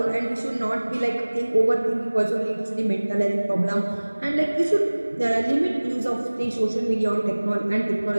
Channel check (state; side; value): inverted; both; correlation -1.00